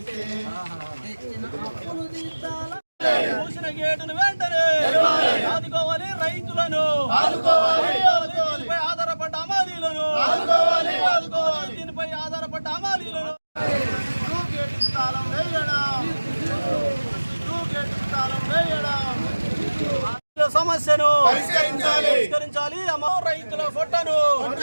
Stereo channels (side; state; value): both; inverted; correlation -1.00